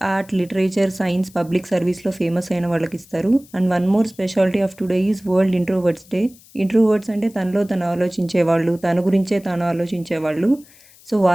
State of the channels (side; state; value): left; noise; hiss, 25 dB below the sound